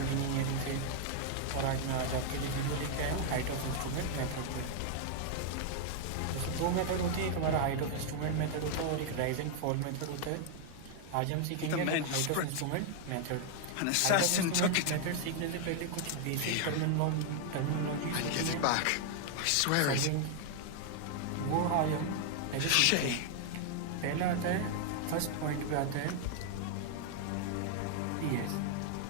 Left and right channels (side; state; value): both; different; correlation 0.00